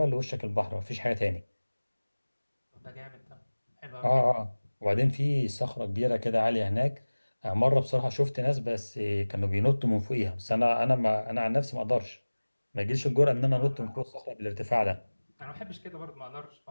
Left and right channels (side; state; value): both; inverted; correlation -1.00